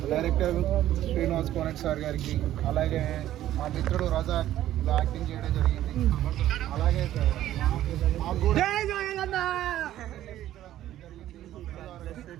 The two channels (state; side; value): quieter; left; 13.0 dB